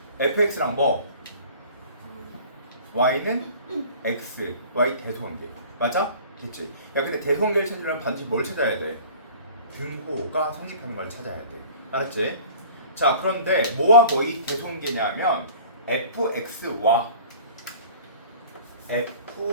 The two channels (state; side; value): inverted; both; correlation -0.45